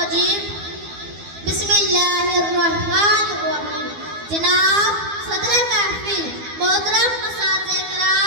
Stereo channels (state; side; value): late; left; 12 ms